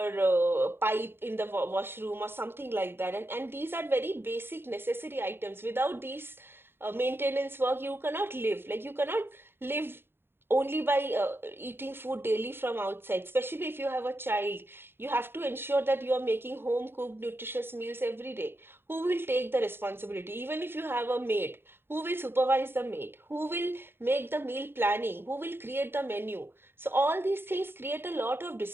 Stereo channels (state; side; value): late; left; 0.11 ms